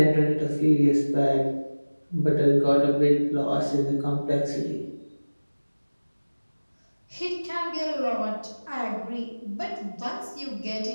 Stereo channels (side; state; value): both; inverted; correlation -1.00